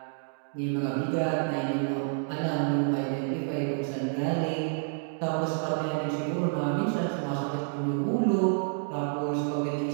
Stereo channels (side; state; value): left; silent; digital silence